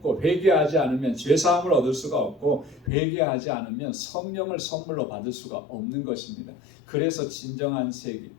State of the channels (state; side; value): drops out; right; at 2.9 s